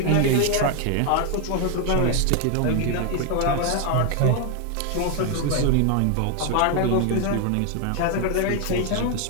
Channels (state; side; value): different; both; correlation 0.01